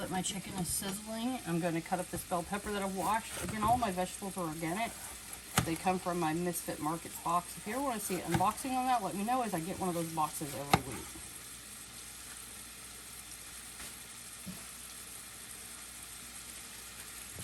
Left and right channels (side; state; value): both; identical; correlation 1.00